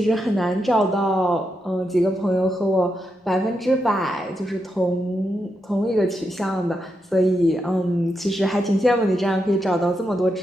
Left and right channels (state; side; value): normal; both; correlation 0.84